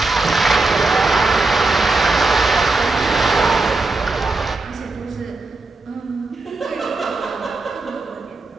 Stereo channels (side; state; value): left; quieter; 3.4 dB